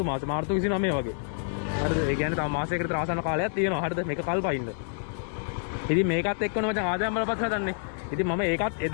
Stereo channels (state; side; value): silent; right; 60 dB below the other